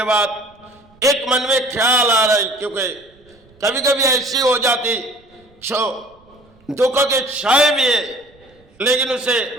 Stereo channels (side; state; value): right; noise; rumble, 30 dB below the sound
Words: बाद एक मन में ख्याल आ रहा है, क्योंकि कभी कभी ऐसी हो जाती जो दुख के छाए भी है लेकिन उसे